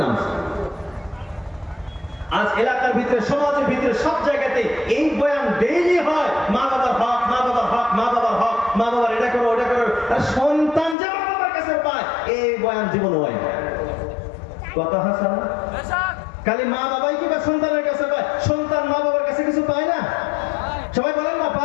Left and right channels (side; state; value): right; drops out; at 11.0 s